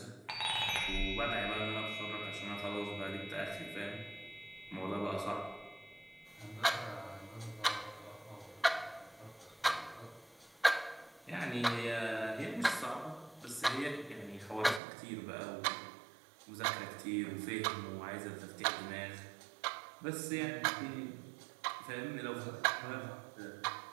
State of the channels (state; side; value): drops out; left; at 14.8 s